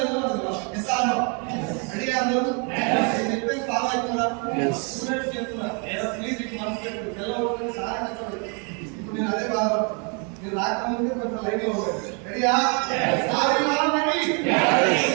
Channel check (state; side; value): quieter; left; 36.2 dB